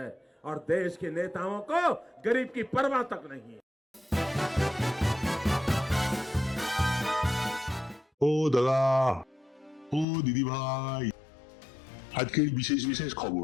और देश के नेताओं को गरीब की परवाह तक नहीं है। ও দাদা, ও দিদি ভাই, আজকের বিশেষ বিশেষ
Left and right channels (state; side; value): drops out; right; at 10.1 s